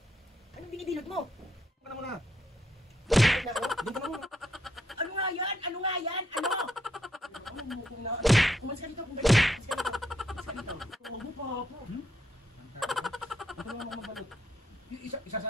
Anong binibilot mo? Doon ka na muna! Bilot na ako? Doon ka na muna! Ano nga yan? Ano nga yan? Ano? Ano mo kung na... Kumalis ka dito, kumalis ka dito. Kumalis ka dito. Huwag mo pa po. Ito lang mga mabalot.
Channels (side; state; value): both; normal; correlation 0.75